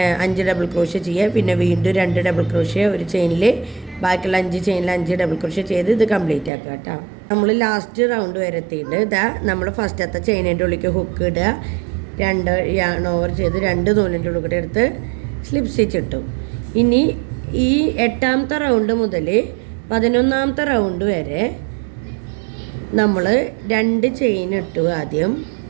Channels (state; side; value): drops out; left; at 6.5 s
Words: 5 ഡബിൾ ക്രോഷ്യ ചെയ്യുക. പിന്നെ വീണ്ടും 2 ഡബിൾ ക്രോഷ്യ ഒരു ചെയിനിൽ, ബാക്കിയുള്ള 5 ചെയിനിൽ 5 ഡബിൾ ക്രോഷ്യ ചെയ്ത് ഇത് കംപ്ലീറ്റ് ആക്കുക കേട്ടോ. നമ്മൾ ലാസ്റ്റ് റൗണ്ട് വരെ എത്തിയിട്ട് നമ്മൾ ഫസ്റ്റത്തെ ചെയിനിൻ്റെ ഉള്ളിലേക്ക് ഹുക്ക് ഇടുക, 2 യാൺ ഓവർ ചെയ്ത് 2 നൂലിൻ്റെ ഉള്ളിൽ കൂടെ എടുത്ത് സ്ലിപ്പ് സ്റ്റിച്ച് ഇട്ടു. ഇനി ഈ 8ാമത്തെ റൗണ്ട് മുതൽ 11ാമത്തെ റൗണ്ട് വരെ നമ്മൾ 2 ചെയിൻ ഇട്ടു ആദ്യം.